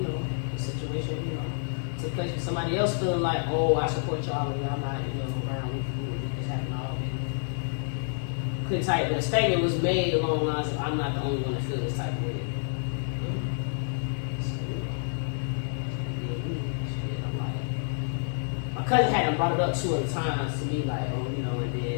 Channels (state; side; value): silent; right; 59 dB below the other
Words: the situation, took place with somebody else feeling like, oh, I support y'all and y'all not, around with this happened all. Couldn't type, but a statement was made along the lines of, I'm not the only one to feel this type of way. So, I'm like, my cousin hadn't brought it up 2 other times to me, like, oh, and